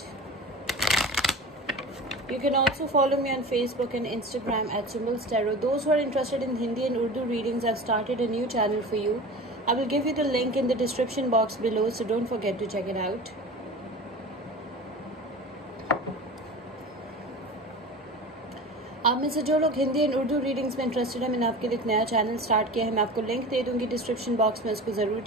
You can also follow me on Facebook and Instagram at Symbols Tarot. Those who are interested in Hindi and Urdu readings, I've started a new channel for you. I will give you the link in the description box below, so don't forget to check it out. आप में से जो लोग Hindi and Urdu readings में interested है, मैंने आपके लिए एक नया चैनल स्टार्ट किया है. मैं आपको लिंक दे दूंगी डिस्क्रिप्शन बॉक्स में, उसको ज़रूर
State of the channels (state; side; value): normal; both; correlation 0.34